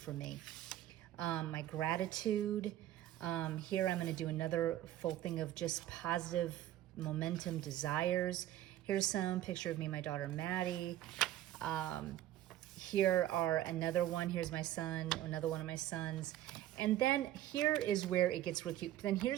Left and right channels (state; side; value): quieter; left; 13.3 dB